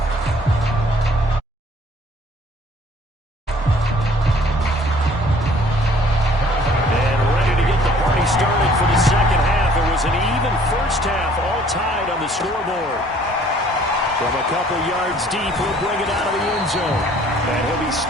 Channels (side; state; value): both; normal; correlation 0.57